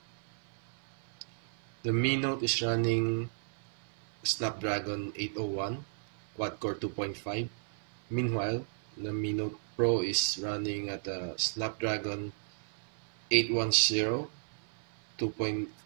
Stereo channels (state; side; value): silent; left; 55 dB below the other